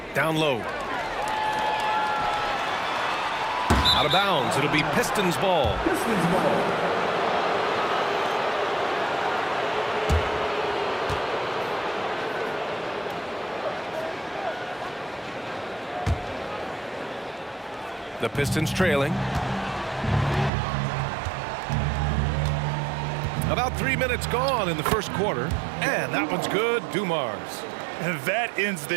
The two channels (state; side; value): drops out; left; at 20.5 s